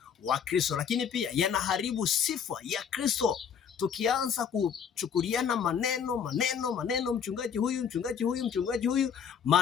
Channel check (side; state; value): right; quieter; 7.5 dB